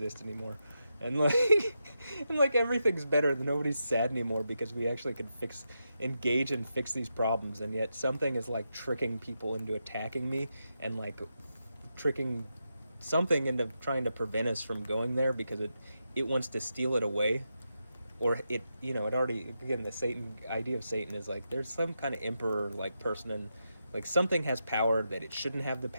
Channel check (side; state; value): both; inverted; correlation -0.86